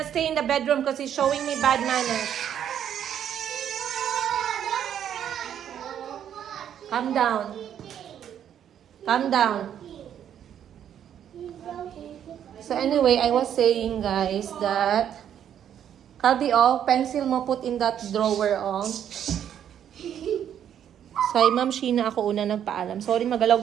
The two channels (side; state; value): left; quieter; 9.6 dB